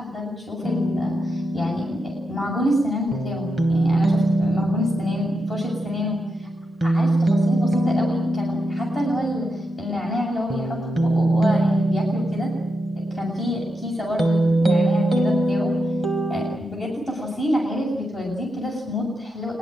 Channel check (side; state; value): both; normal; correlation 0.85